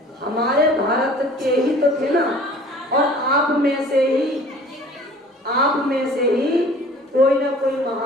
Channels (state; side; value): normal; both; correlation 0.48